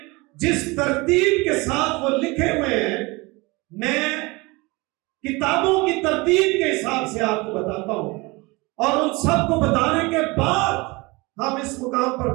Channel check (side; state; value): left; quieter; 24.6 dB